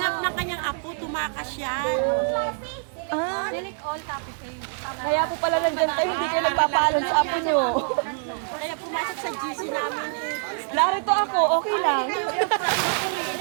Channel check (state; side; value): silent; left; 62 dB below the other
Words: na kanyang ako, tumakas siya. Ah, kaya po pala nandyan kayo, hindi kayo nagpapaalam sa apo nyo. Kaya pumasok sa GC namin eh. Narito ako, okay lang.